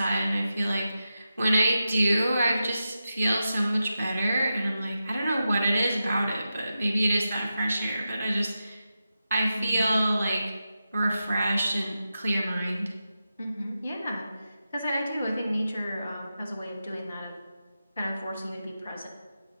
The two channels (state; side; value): inverted; both; correlation -0.90